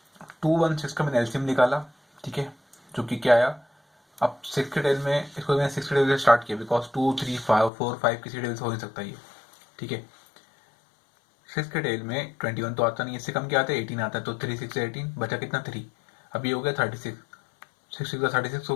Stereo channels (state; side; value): drops out; right; at 7.7 s